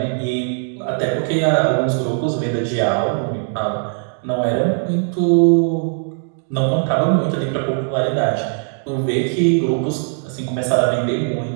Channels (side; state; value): left; silent; 59 dB below the other